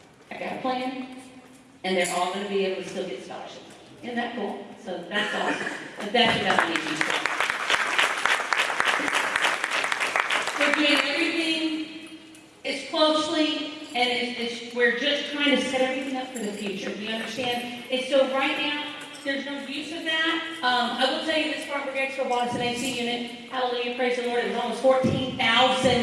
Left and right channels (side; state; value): both; identical; correlation 1.00